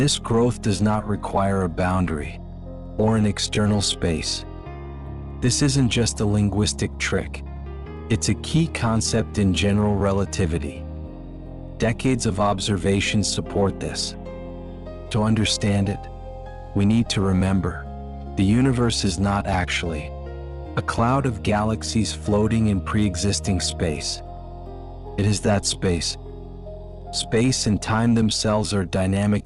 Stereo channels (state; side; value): identical; both; correlation 1.00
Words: growth does not require a boundary or an external space. This isn't just a linguistic trick. It's a key concept in general relativity. Decades of observations support this. To understand it, we need to remember, the universe is not actually a cloud of galaxies floating in pre-existing space. It is that space. Space and time themselves are